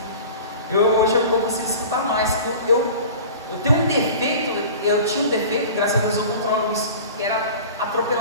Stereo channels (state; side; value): inverted; both; correlation -0.39